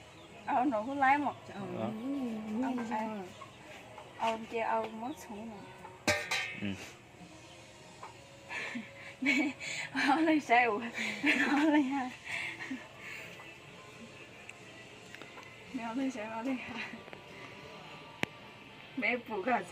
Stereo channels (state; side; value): identical; both; correlation 1.00